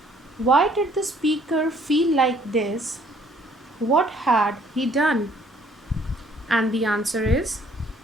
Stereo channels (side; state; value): both; normal; correlation 0.61